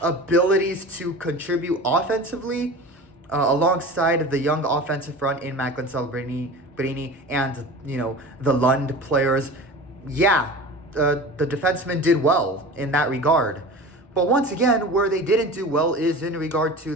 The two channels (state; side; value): normal; both; correlation 0.35